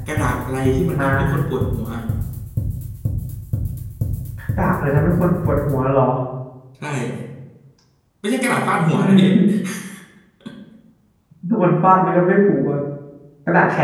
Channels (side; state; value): both; identical; correlation 1.00